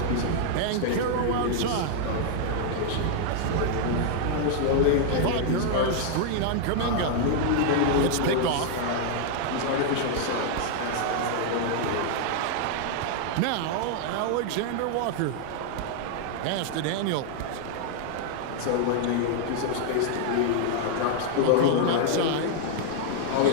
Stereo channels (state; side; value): different; both; correlation 0.00